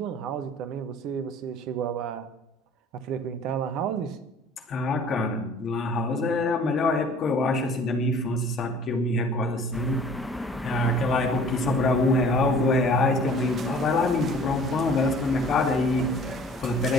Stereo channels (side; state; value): both; normal; correlation 0.50